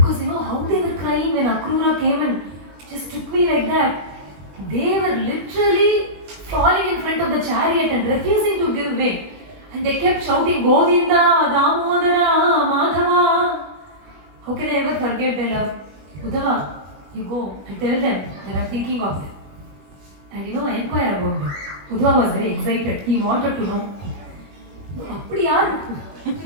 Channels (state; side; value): late; left; 21 ms